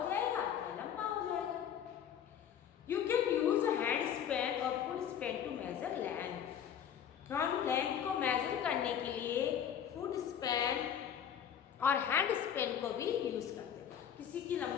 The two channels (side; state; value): right; quieter; 9.0 dB